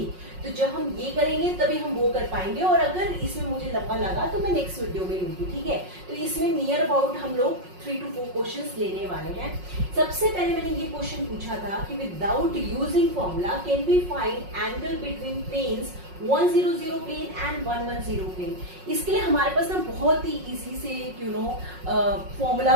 तो जब हम ये करेंगे तभी हम वो कर पाएंगे, और अगर इसमें मुझे लंबा लगा तो मैं नेक्स्ट वीडियो में लूंगी, ठीक है। तो इसमें नियर अबाउट हम लोग 3 to 4 क्वेश्चंस लेने वाले हैं। सबसे पहले मैंने ये क्वेश्चन पूछा था कि without using formula can we find angle between planes 100 plane and 110 plane. इसके लिए हमारे पास ना बहुत ही इजी से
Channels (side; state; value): left; late; 5.5 ms